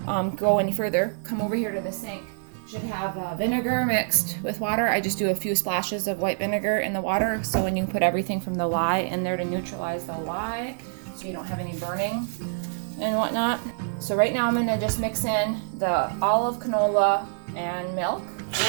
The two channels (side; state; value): left; silent; digital silence